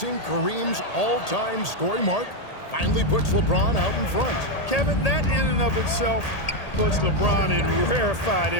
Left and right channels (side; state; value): right; late; 1.8 ms